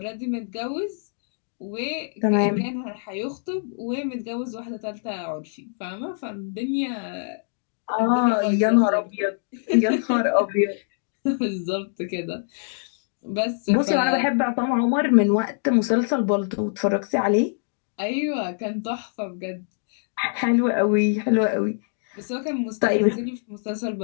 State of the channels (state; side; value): silent; right; digital silence